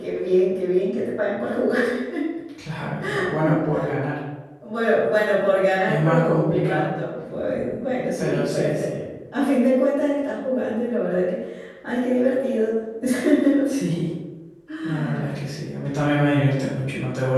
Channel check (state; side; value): identical; both; correlation 1.00